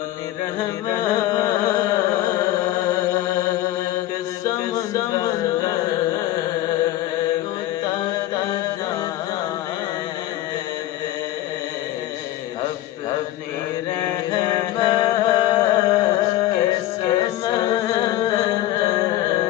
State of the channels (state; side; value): quieter; right; 14.6 dB